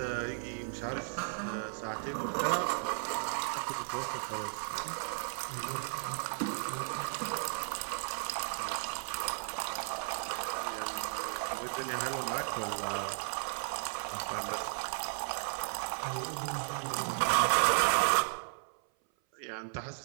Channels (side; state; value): left; silent; 54 dB below the other